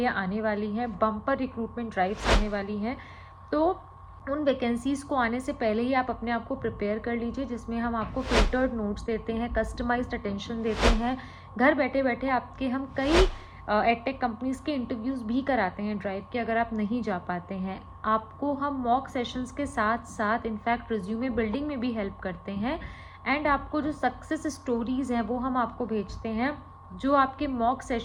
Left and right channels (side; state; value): both; identical; correlation 1.00